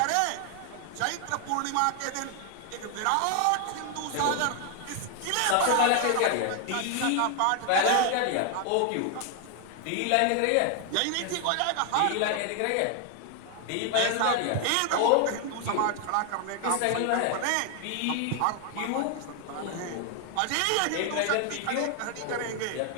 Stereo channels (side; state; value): both; different; correlation 0.00